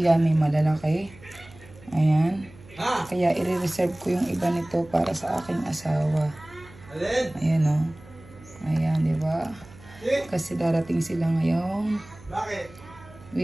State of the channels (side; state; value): right; noise; hum, 22 dB below the sound